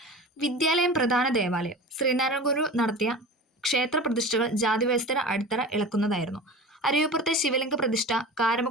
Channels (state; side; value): normal; both; correlation 0.34